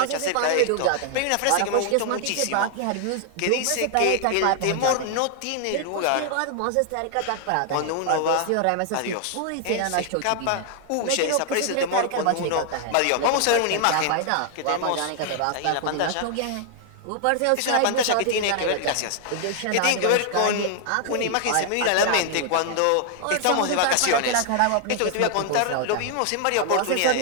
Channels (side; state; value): both; different; correlation 0.00